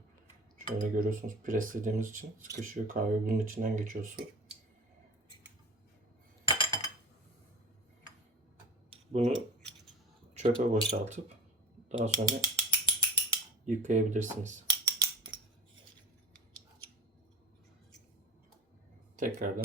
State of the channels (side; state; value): both; normal; correlation 0.37